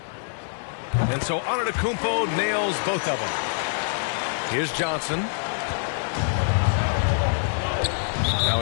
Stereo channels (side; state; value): right; silent; 62 dB below the other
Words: And so Antetokounmpo nails both of them. Here's Johnson. Now